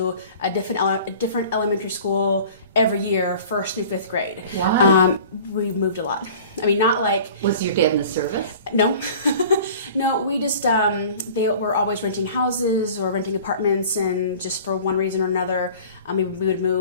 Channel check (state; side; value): inverted; both; correlation -0.44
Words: a different elementary school every year, 1st through 5th grade. Wow. We moved a lot. Not like... Was your dad in the service? No. No, we just, they were always renting houses or renting apartments, and just for one reason or another, we would